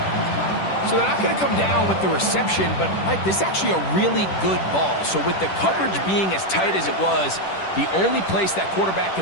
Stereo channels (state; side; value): late; right; 10 ms